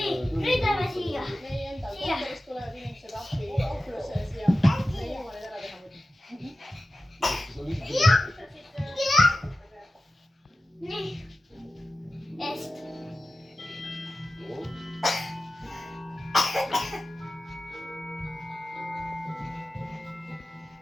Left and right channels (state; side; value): normal; both; correlation 0.94